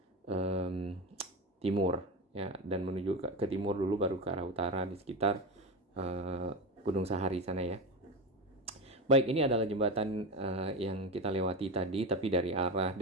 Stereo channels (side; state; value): both; normal; correlation 0.20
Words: timur ya, dan menuju ke timur dulu baru ke arah utara di sekitar Gunung Sahari sana ya. Baik, ini adalah jembatan yang kita lewati tadi, tapi dari arah